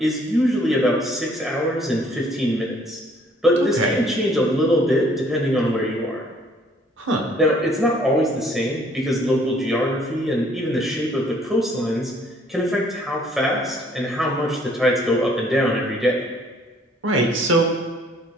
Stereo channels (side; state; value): both; normal; correlation 0.61